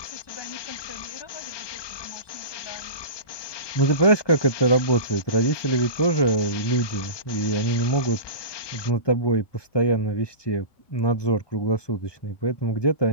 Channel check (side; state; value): right; late; 1.2 ms